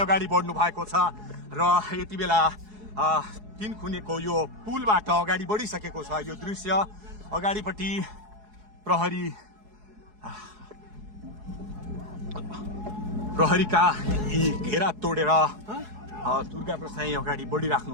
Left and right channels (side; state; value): left; late; 4.7 ms